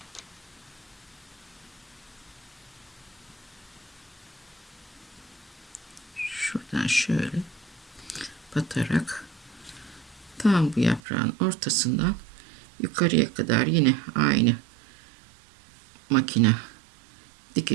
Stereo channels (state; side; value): drops out; left; at 11.0 s